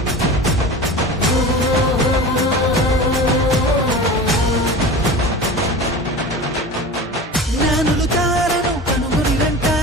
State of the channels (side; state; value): both; normal; correlation 0.33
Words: జ్ఞానులు తారను కనుగొనిరంట,